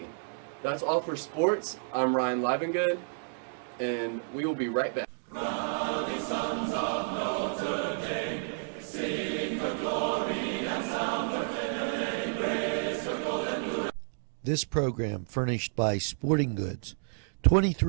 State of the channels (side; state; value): left; silent; digital silence